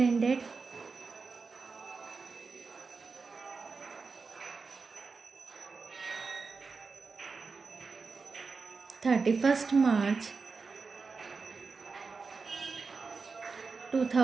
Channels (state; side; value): quieter; left; 4.6 dB